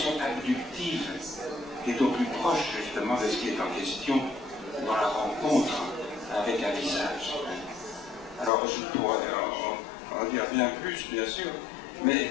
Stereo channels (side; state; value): right; drops out; at 8.5 s